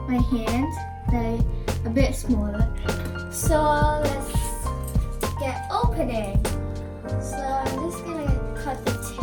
my hand, like a bit smaller. So let's get opening. So I'm just gonna cut the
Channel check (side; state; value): both; identical; correlation 1.00